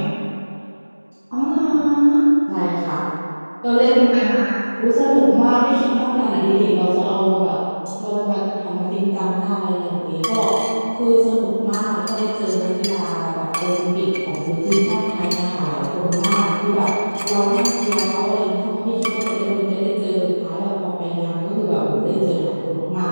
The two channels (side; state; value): both; inverted; correlation -1.00